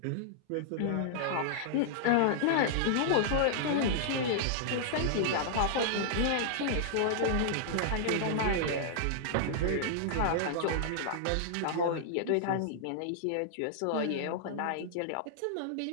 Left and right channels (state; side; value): different; both; correlation -0.01